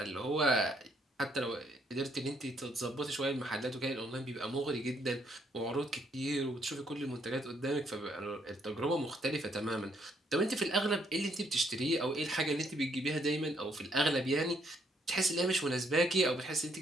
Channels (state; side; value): normal; both; correlation 0.71